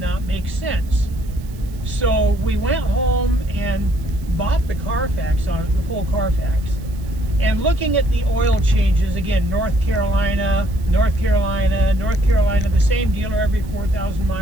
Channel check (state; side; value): noise; right; hiss, 25 dB below the sound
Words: make sense. So we went home and bought the Carfax on it, the full Carfax. And looking at the oil changes, again, North Carolina, the same dealer every 4,000